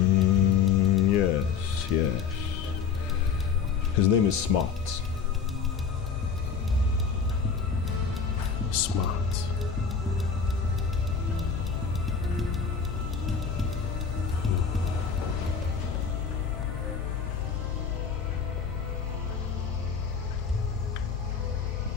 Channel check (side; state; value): right; quieter; 6.1 dB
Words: Yes. His name is Smart. Smart.